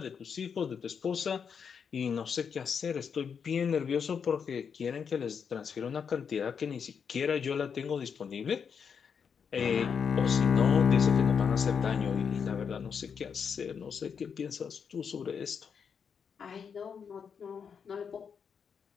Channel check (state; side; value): quieter; right; 6.7 dB